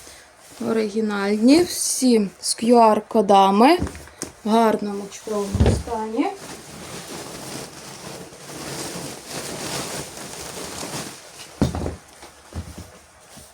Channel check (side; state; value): both; identical; correlation 1.00